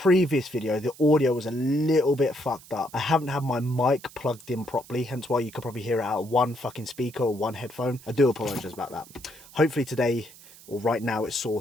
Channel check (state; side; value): noise; right; hiss, 21 dB below the sound